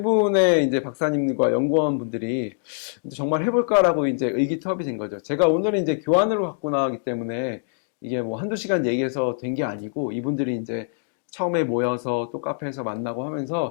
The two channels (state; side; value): silent; right; digital silence